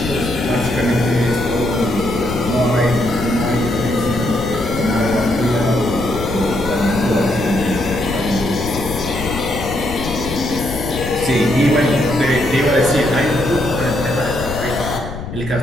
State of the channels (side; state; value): left; noise; rumble, 8 dB below the sound